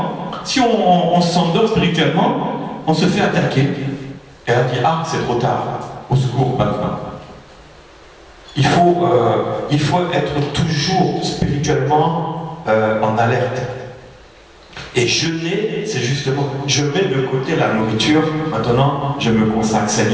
si on s'endort spirituellement, on se fait attaquer. Et on dit, ah, c'est trop tard, au secours maintenant. Il faut être toujours spirituellement en alerte. Et jeûner, c'est justement, je mets de côté la nourriture, maintenant je me consacre,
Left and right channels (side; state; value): both; identical; correlation 1.00